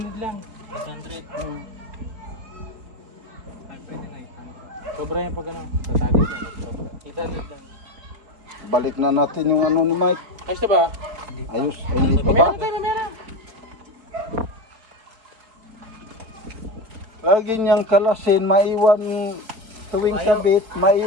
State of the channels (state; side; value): late; left; 4.4 ms